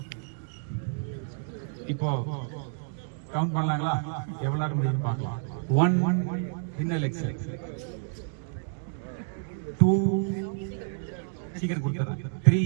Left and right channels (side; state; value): left; silent; digital silence